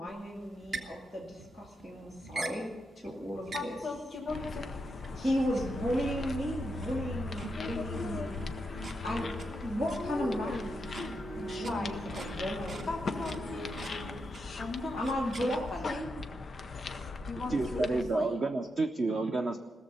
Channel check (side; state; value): both; normal; correlation 0.84